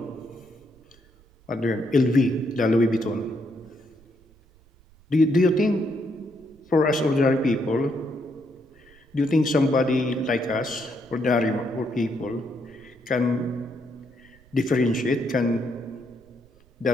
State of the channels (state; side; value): noise; right; rumble, 28 dB below the sound